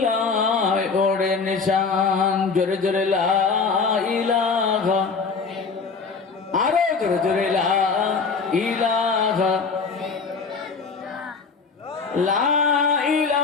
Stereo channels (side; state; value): right; quieter; 4.9 dB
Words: ওড়ে নিশান। জোরে জোরে লা ইলাহা, আরো জোরে জোরে লা ইলাহা, লা